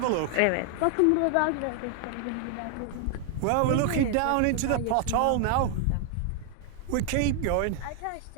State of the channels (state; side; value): different; both; correlation 0.00